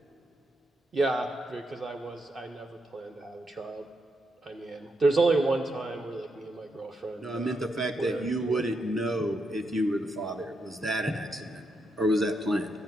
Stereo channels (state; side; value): normal; both; correlation 0.81